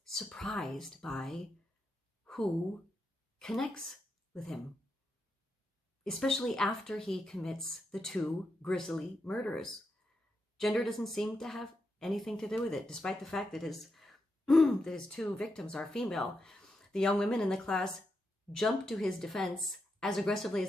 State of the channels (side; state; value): both; normal; correlation 0.85